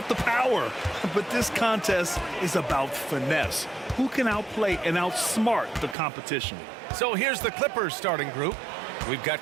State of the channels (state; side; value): drops out; left; at 6.0 s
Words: the power. But this contest is about finesse. Who can outplay and outsmart the competition? So here's the Clippers starting group. We've got